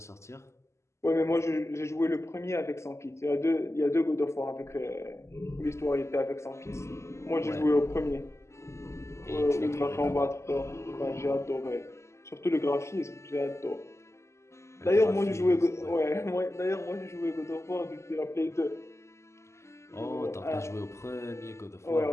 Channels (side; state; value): right; late; 0.13 ms